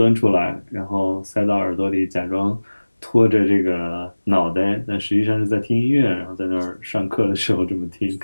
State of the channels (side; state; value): both; inverted; correlation -1.00